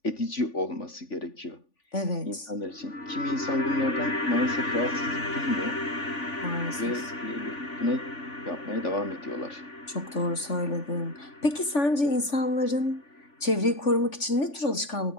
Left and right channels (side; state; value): right; late; 3.5 ms